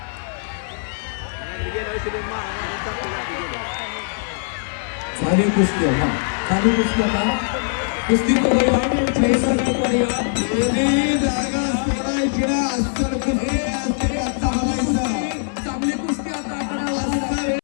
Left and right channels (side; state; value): right; silent; 64 dB below the other